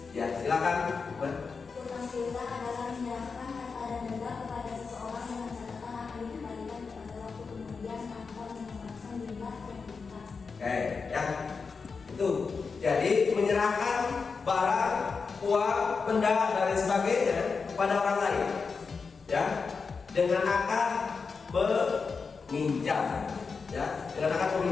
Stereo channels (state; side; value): quieter; right; 5.0 dB